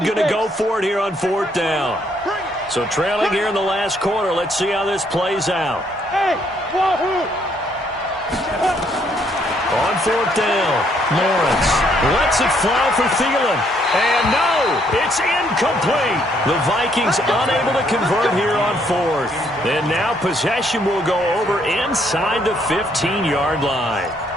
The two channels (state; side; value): normal; both; correlation 0.69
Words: going to go for it here on 4th down. So trailing here in the last quarter, let's see how this plays out. Hey, wahoo! On 4th down, Lawrence lets it fly for Thielen. And no, it's incomplete. The Vikings unable to convert here on 4th. And now possession will go over inside the 15-yard line.